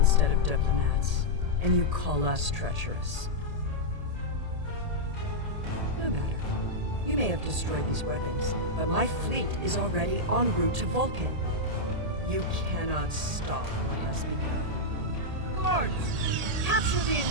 of diplomats, and you call us treacherous. No matter. You may have destroyed these weapons, but my fleet is already en route to Vulcan. You cannot stop what has begun. Guards! Capture the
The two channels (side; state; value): left; late; 1.8 ms